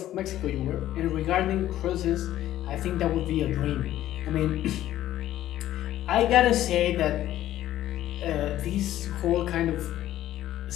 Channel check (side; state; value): right; quieter; 13.2 dB